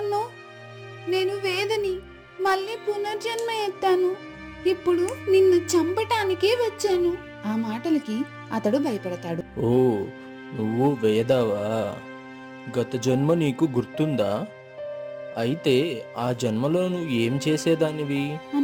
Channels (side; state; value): both; identical; correlation 1.00